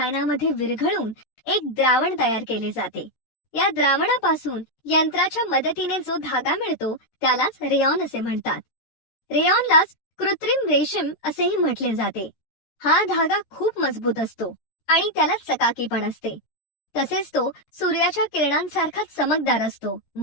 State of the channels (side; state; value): right; late; 13 ms